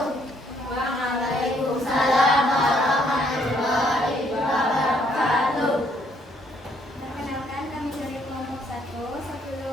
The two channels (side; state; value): both; normal; correlation 0.68